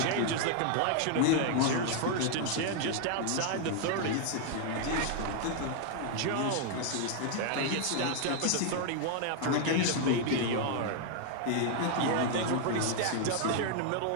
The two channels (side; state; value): both; different; correlation 0.00